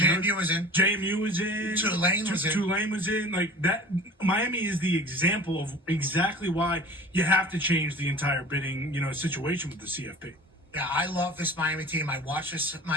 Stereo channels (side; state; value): both; normal; correlation 0.41